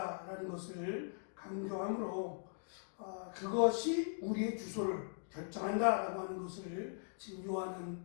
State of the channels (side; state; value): right; silent; digital silence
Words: 것을 강조하므로 그것이 우리의 주소를 결정한다라고 하는 것을 지금 요한은